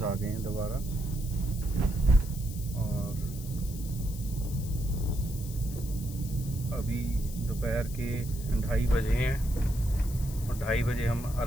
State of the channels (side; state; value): left; noise; hiss, 14 dB below the sound